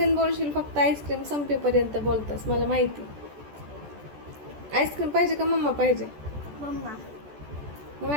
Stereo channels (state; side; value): late; left; 14 ms